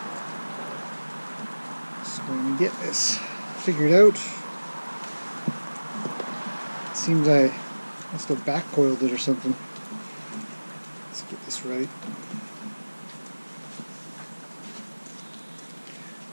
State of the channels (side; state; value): both; inverted; correlation -1.00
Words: So going to get this figured out. It seems I must have back coiled it or something. Let's get this right.